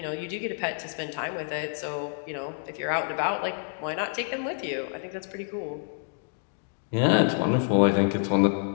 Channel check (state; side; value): silent; right; 59 dB below the other